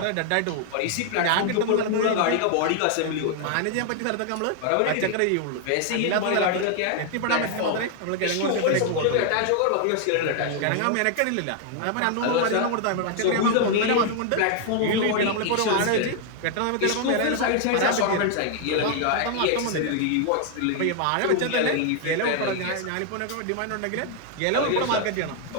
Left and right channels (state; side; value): different; both; correlation 0.00